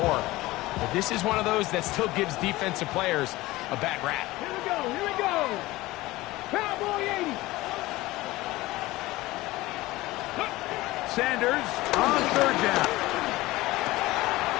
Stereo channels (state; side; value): quieter; right; 18.9 dB